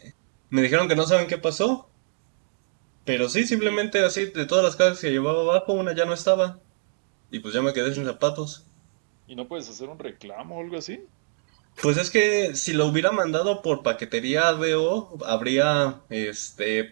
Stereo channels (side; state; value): left; silent; digital silence